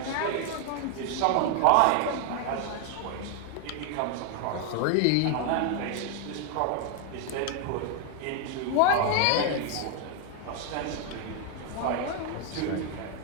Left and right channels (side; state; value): both; different; correlation 0.00